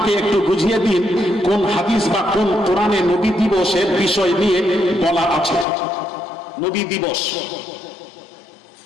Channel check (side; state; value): right; drops out; at 5.7 s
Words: একটু বুঝিয়ে দিন কোন হাদিস বা কোন কোরআনে নবী দিবসের বিষয় নিয়ে বলা আছে। নবী দিবস